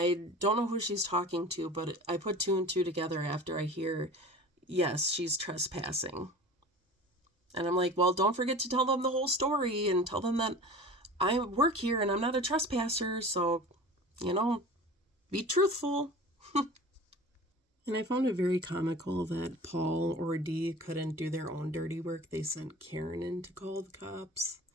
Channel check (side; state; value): both; normal; correlation 0.39